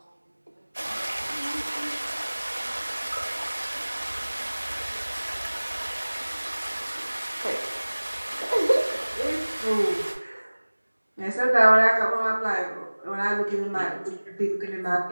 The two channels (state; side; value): inverted; both; correlation -1.00